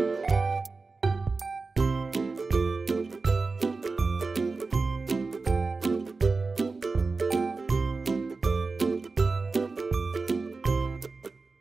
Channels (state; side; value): quieter; left; 4.0 dB